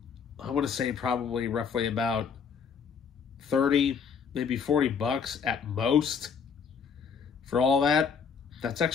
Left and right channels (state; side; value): quieter; right; 6.4 dB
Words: I want to say probably roughly about 30, maybe 40 bucks at most for all that. That's